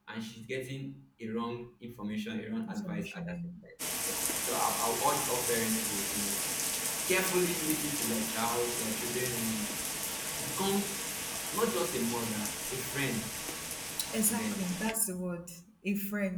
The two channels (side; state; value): both; identical; correlation 1.00